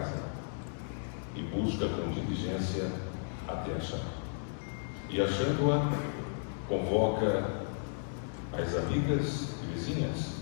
e busca com diligência até achar. E achando-a, convoca as amigas e vizinhas,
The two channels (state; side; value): silent; right; digital silence